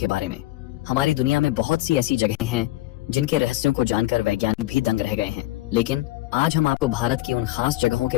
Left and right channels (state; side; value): quieter; right; 17.4 dB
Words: बारे में। हमारी दुनिया में बहुत सी ऐसी जगहें हैं जिनके रहस्यों को जानकर वैज्ञानिक भी दंग रह गए हैं, लेकिन आज हम आपको भारत की उन खास जगहों के